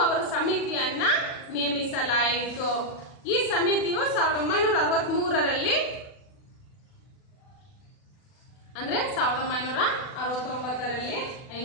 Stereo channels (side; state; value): right; late; 40 ms